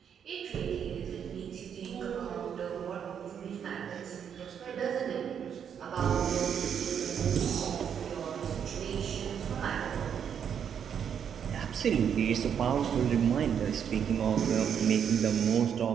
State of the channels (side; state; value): left; quieter; 8.1 dB